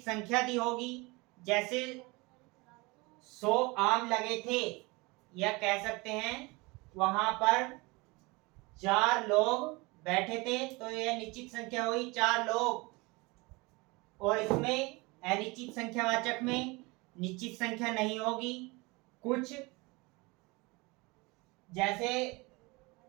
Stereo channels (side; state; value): left; quieter; 25.1 dB